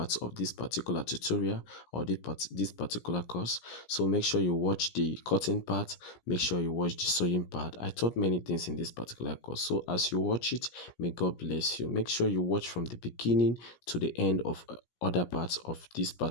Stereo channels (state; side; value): late; right; 17 ms